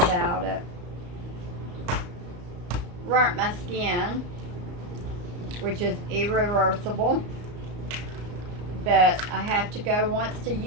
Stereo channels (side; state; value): left; late; 34 ms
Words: it. Burnt my skin, which is irreversible, but I have to go once a